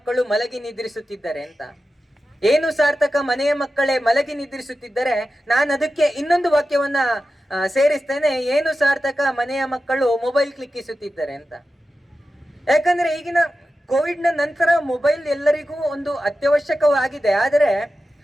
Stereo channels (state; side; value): normal; both; correlation 0.92